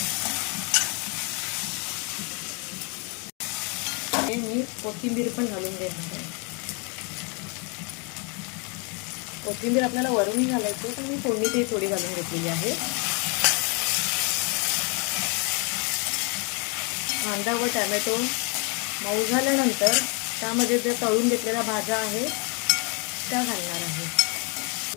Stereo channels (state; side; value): quieter; right; 34.6 dB